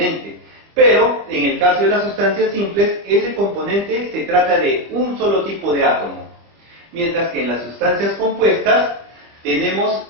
Pero en el caso de las sustancias simples, ese componente se trata de un solo tipo de átomo. Mientras que en las sustancias compuestas tenemos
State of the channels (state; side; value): late; left; 25 ms